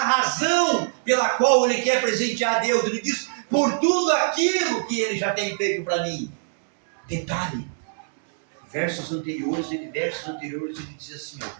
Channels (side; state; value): left; silent; 63 dB below the other